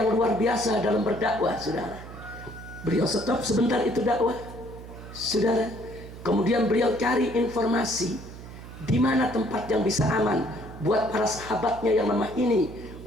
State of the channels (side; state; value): right; noise; hum, 14 dB below the sound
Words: luar biasa dalam berdakwah, saudara. Beliau stop sebentar itu dakwah, saudara. Kemudian beliau cari informasi di mana tempat yang bisa aman buat para sahabatnya yang lemah ini